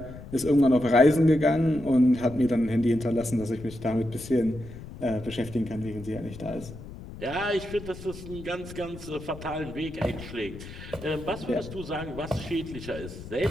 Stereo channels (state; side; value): noise; left; rumble, 14 dB below the sound